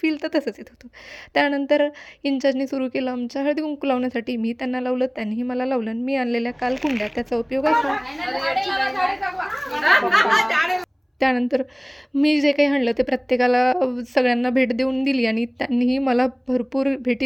तर तसंच येत होतं. त्यानंतर इंचार्जनी सुरू केलं आमच्या हळदी-कुंकू लावण्यासाठी. मी त्यांना लावलं, त्यांनीही मला लावलं आणि मी आणलेल्या काल कुंड्या, त्याचा उपयोग असा त्यानंतर मी जे काही आणलं ते प्रत्येकाला सगळ्यांना भेट देऊन दिली आणि त्यांनीही मला भरपूर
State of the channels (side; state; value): both; identical; correlation 1.00